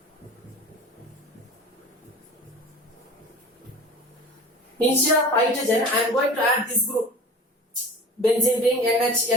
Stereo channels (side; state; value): both; normal; correlation 0.38